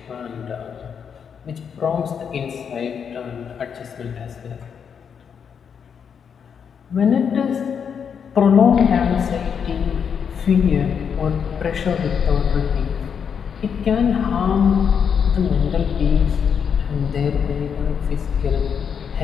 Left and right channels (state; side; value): quieter; right; 7.1 dB